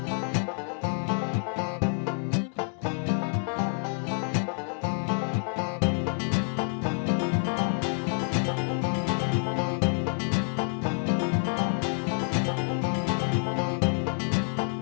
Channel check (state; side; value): silent; right; 59 dB below the other